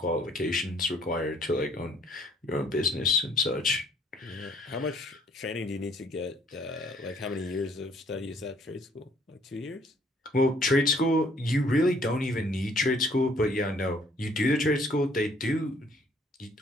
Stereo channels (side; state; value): both; normal; correlation 0.61